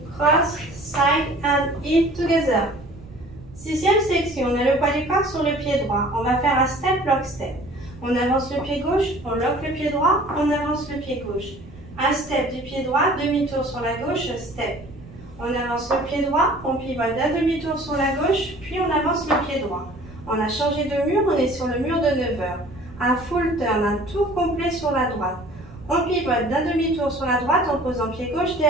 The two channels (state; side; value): noise; right; rumble, 19 dB below the sound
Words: cross, side and heel together. Sixième section, on a le poids du corps sur le pied droit. On va faire un step, lock, step. On avance le pied gauche, on lock le pied droit, on avance le pied gauche. Un step du pied droit, demi-tour sur la gauche, step. On avance le pied droit, on pivote d'un demi-tour sur la gauche, puis on avance le pied droit. On a changé de mur, on est sur le mur de 9 heures. Un full turn, un tour complet sur la droite. On pivote d'un demi-tour sur la droite en posant pied gauche